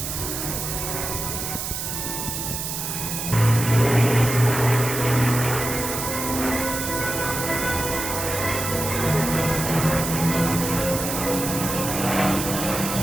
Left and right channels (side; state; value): right; noise; hiss, 4 dB below the sound